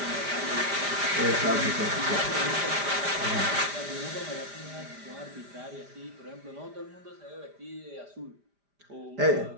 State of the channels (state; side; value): late; left; 5.0 ms